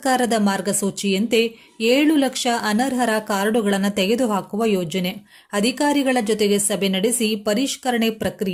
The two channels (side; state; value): both; identical; correlation 1.00